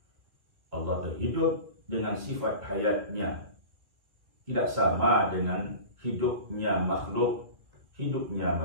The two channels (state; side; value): late; left; 2.0 ms